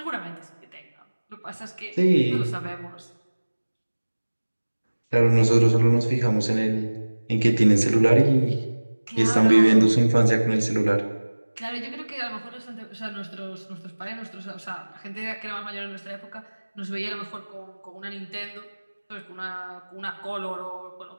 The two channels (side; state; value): both; inverted; correlation -1.00